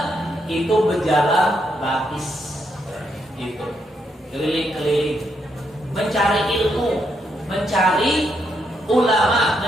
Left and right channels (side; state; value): both; normal; correlation 0.78